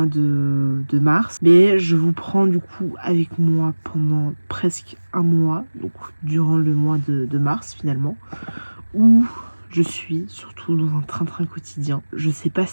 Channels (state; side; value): inverted; both; correlation -1.00